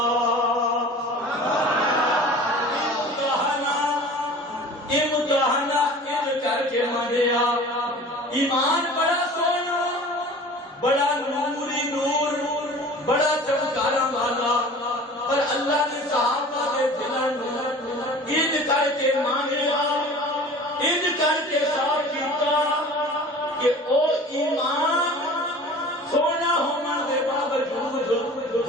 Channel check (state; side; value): normal; both; correlation 0.42